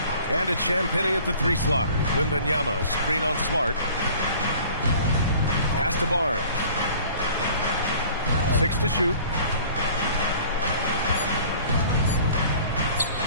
And it's Champagnie at the 3 slot. Wembanyama, screen on Smart. Pass to Barnes. 6 to shoot.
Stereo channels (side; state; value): both; inverted; correlation -0.49